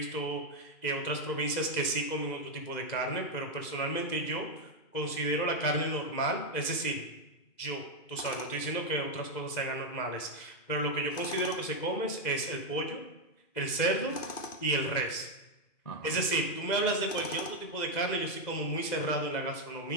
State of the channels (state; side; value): late; right; 2.0 ms